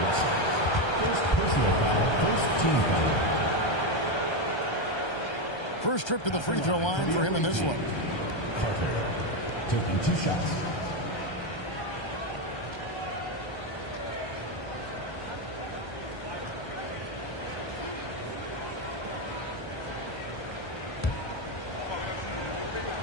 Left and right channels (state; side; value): late; right; 1.3 ms